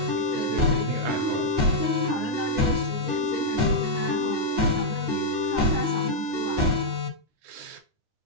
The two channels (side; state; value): left; late; 9.8 ms